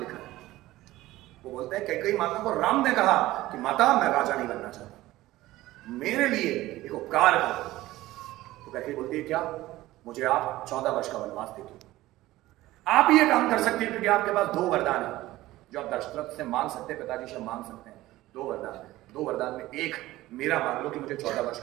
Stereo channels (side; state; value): left; quieter; 16.8 dB